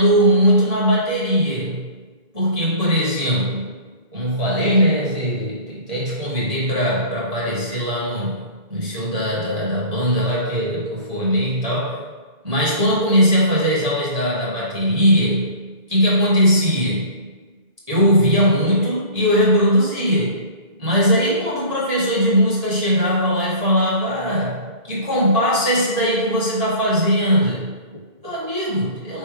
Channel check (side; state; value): left; late; 1.8 ms